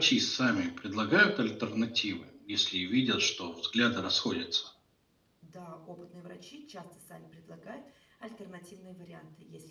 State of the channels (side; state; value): both; identical; correlation 1.00